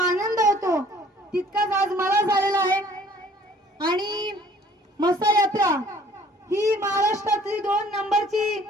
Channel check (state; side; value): normal; both; correlation 0.56